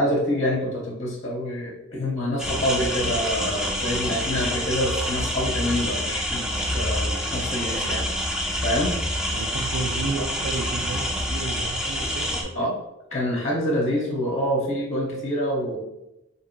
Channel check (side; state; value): both; normal; correlation 0.39